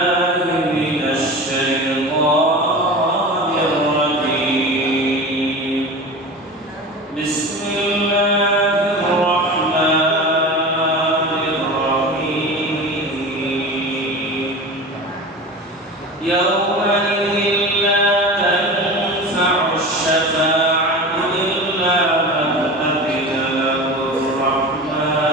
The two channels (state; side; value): normal; both; correlation 0.31